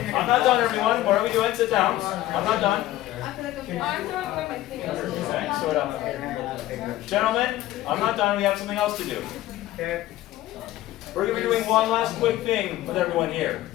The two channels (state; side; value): quieter; right; 15.2 dB